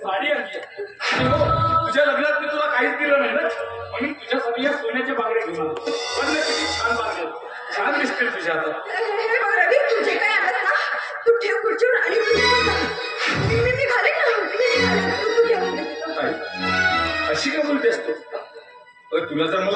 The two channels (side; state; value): both; identical; correlation 1.00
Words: आणली आहे. तुझ्या लग्नात मी तुला काहीच दिलं नाही ना म्हणून तुझ्यासाठी या सोन्याच्या बांगड्या घेऊन आलो. बघ ना किती छान बांगड्या छान दिसतील तुझ्या आता. रवी तुझे काय आणत ना तू ठेव खुर्चीवर आणि मी घालेन ना तू ठेव. अशी का बोलतेस तू? तुला जर